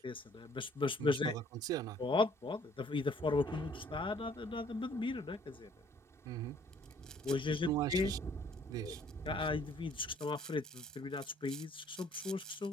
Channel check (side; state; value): both; normal; correlation 0.60